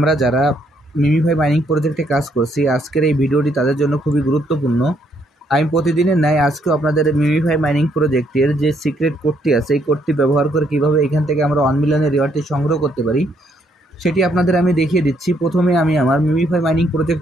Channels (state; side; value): normal; both; correlation 0.71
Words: যারা MemeFi mining প্রজেক্টে কাজ করছি, আজকের এই ভিডিওটি তাদের জন্য খুবই গুরুত্বপূর্ণ। আমি প্রতিদিনের ন্যায় আজকেও আপনাদের মিমিফাই মাইনিং প্রজেক্টের যে সিক্রেট কোডটি আছে, এই কোডটি ব্যবহার করে কীভাবে এখান থেকে আমরা 1 মিলিয়নের রিওয়ার্ডটি সংগ্রহ করতে পারি সেটি আপনাদের আমি দেখিয়ে দিচ্ছি। প্রথমে আমি আমার মিমিফাই মাইনিং